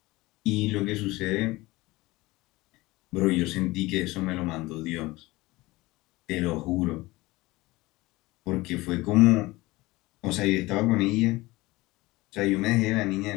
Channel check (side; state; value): right; quieter; 20.5 dB